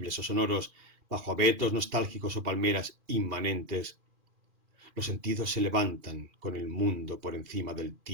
o sonoros, bajo abetos nostálgicos o palmeras inmanentes, los sentidos se levantan con el mundo por encima del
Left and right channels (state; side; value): late; left; 2.4 ms